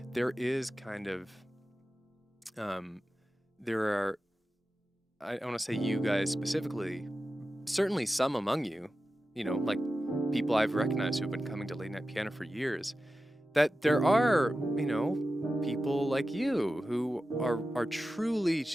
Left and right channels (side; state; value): both; normal; correlation 0.93